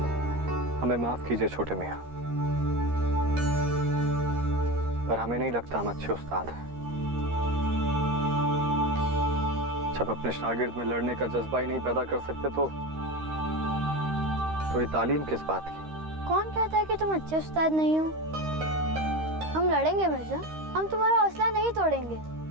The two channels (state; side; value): late; left; 13 ms